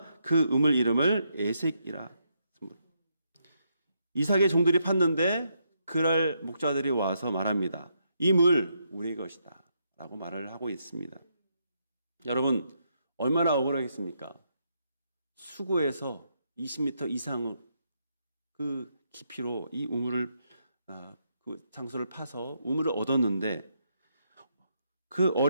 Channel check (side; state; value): both; inverted; correlation -0.78